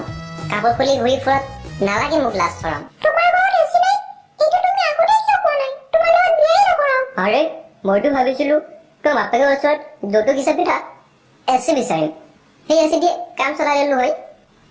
কাপোৰ খুলি ঘূৰি ফুৰত নালাগে মোক লাজ চৰম তোমাৰ ঘৰত এচি নাই কিন্তু তুমি আগতে কিয় কোৱা নাই তোমাৰ লগত বিয়াই নকৰাম আৰে মইতো ভাবিছিলো তোৰ বাপেকৰ ওচৰত যৌতুক হিচাপে থাক এচি বিচাৰিম সেই এচি দিয়ে কাম চলাই দিলো হয়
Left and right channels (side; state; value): both; identical; correlation 1.00